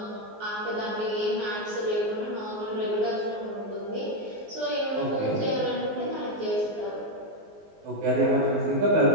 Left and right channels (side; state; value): left; late; 19 ms